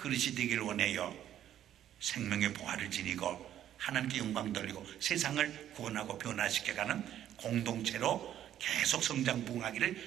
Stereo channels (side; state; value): left; quieter; 11.2 dB